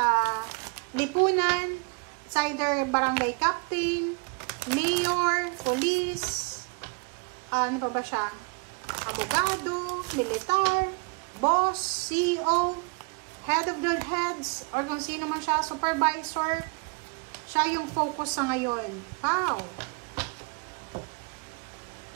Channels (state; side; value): quieter; left; 33.0 dB